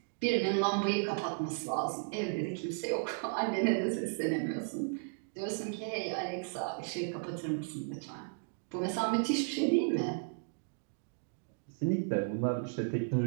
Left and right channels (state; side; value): silent; left; digital silence